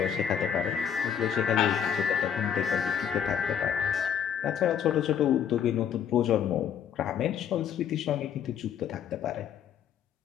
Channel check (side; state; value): right; quieter; 8.6 dB